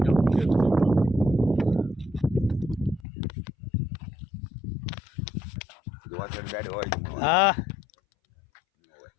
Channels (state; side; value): drops out; right; at 3.1 s